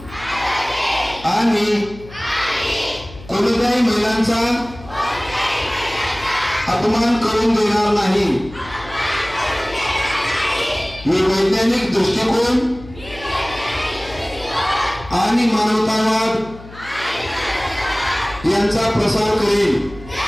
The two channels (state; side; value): noise; left; hum, 18 dB below the sound